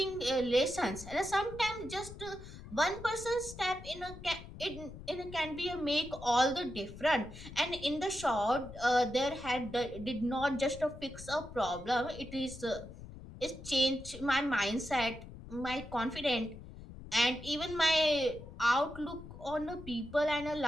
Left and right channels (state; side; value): noise; left; rumble, 14 dB below the sound